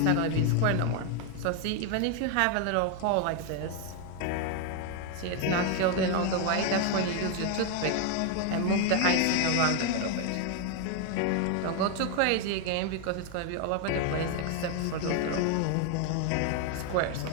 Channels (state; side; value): different; both; correlation 0.01